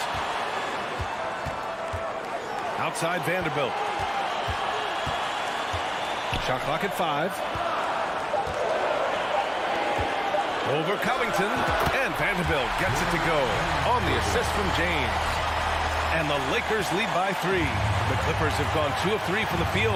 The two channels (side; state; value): both; identical; correlation 1.00